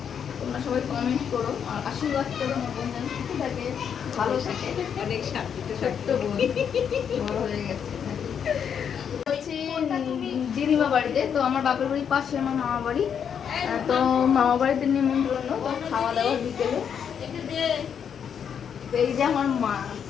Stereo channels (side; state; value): right; quieter; 7.8 dB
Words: তোমরা সবাই কমেন্ট করো আর আশীর্বাদ করো, আমার বোন যেন সুখে থাকে, ভালো থাকে। অনেক ছোট্ট বোন, বড় হয়ে গেছে। দিদিমা বাড়িতে, তো আমার বাপের বাড়ির পাশে আমার মামা বাড়ি। তো মামা বাড়িতে নিমন্ত্রণ, তো খাওয়া দাওয়া বিকেলে। এই যে আমার মা